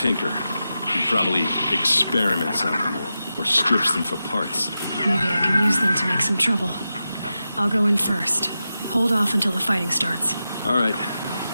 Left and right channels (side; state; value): both; inverted; correlation -0.91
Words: He probably experiments on them or strips them for parts. Maybe I can use them to make some trouble. I'll go in first. Hold off until the fighting starts. All right.